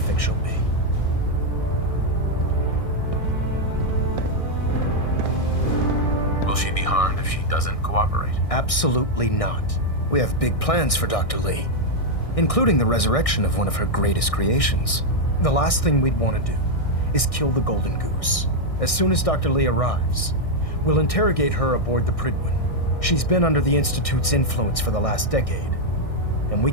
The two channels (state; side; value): late; right; 1.6 ms